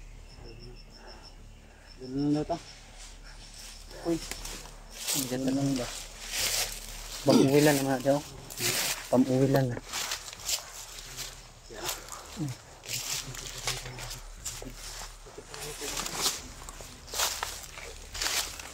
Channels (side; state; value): both; identical; correlation 1.00